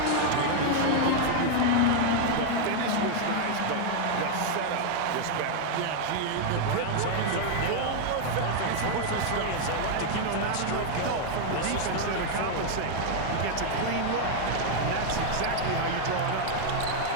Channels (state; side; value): different; both; correlation 0.00